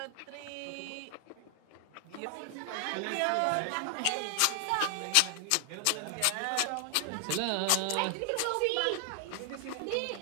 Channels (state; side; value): different; both; correlation 0.00